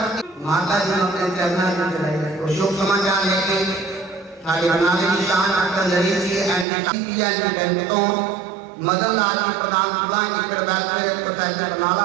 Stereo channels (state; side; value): drops out; left; at 6.7 s